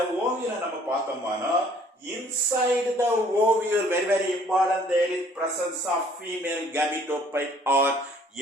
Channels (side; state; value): both; normal; correlation 0.58